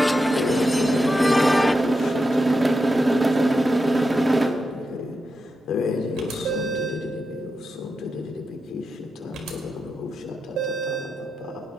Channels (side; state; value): both; normal; correlation 0.88